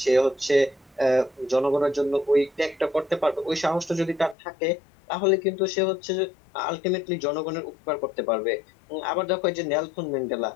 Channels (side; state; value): right; drops out; at 4.4 s